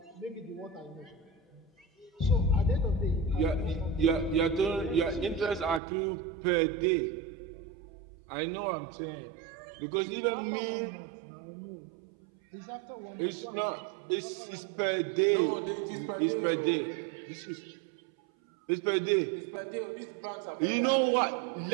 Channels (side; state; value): left; drops out; at 5.8 s